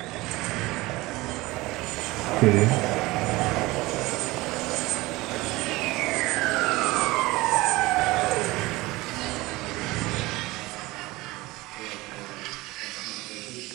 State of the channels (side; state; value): left; quieter; 20.5 dB